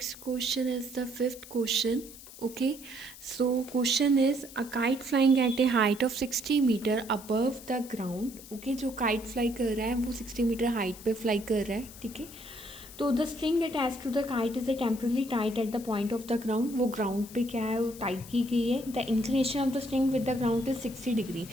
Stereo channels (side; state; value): left; noise; hiss, 17 dB below the sound